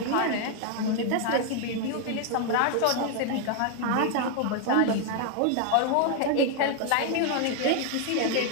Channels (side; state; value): both; different; correlation 0.00